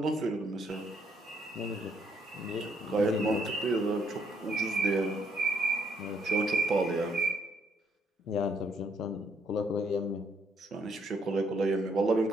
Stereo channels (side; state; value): both; normal; correlation 0.71